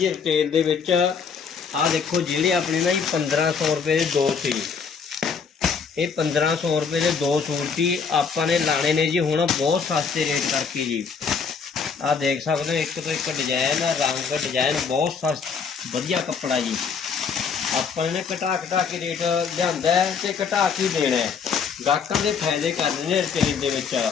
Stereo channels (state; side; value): quieter; right; 5.9 dB